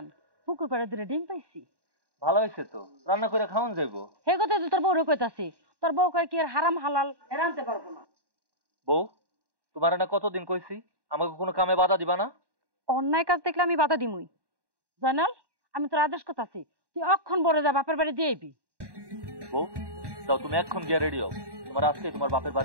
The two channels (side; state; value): left; late; 1.1 ms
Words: পুকুর পাড়ে দুটো ডিম পাইছি। ভালো হইছে তো, রান্না করে খাওয়ান যাইবো। হে কথা তো তোর বউরে কইতাছি, তোর বউ কয় কি আর হারাম হালাল রানতে পারবো না। বউ, তোমার না কতদিন কইছি আমাকে কোনো কামে বাধা দিবা না? অন্যায় কাজ দেখলে আমি বাধা দিমুই। জানাল, আমি তোর আদেশ করতাছি, তুই অক্ষণ বড় যা বাপের বাড়ি দিয়ে আইবি। বউ, যাও তুমি এখন গিয়ে রেডি হও, তোমার আজকে তোমার বাপের